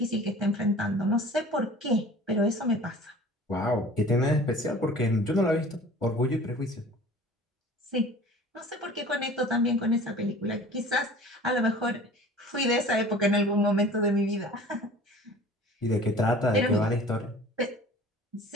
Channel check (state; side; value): normal; both; correlation 0.45